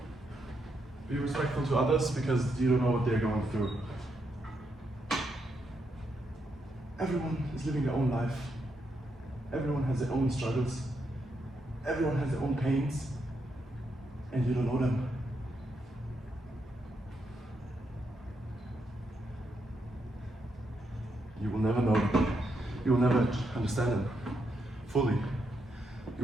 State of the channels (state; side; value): normal; both; correlation 0.80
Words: Be respectful to others because you don't know what they're going through. Everyone is living their own life. Everyone has their own struggles. Everyone has their own pains. And you don't know them. You will never know them. You will never understand them fully.